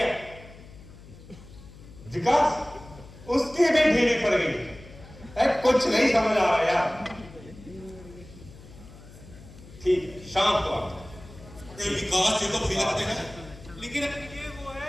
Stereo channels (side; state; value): left; noise; hum, 19 dB below the sound